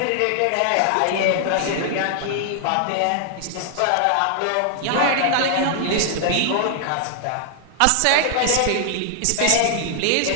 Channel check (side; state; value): both; different; correlation -0.01